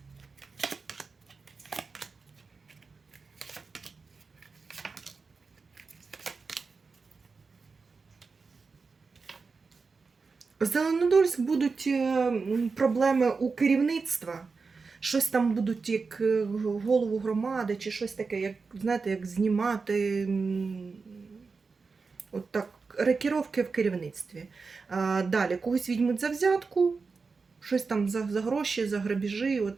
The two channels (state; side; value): quieter; left; 4.6 dB